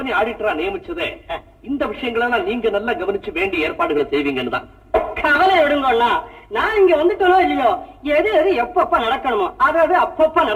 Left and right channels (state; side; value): identical; both; correlation 1.00